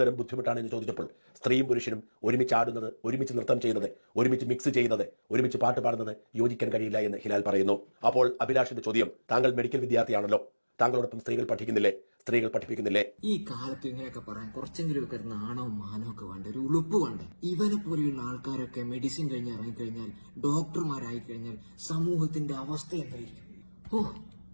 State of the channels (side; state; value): both; inverted; correlation -1.00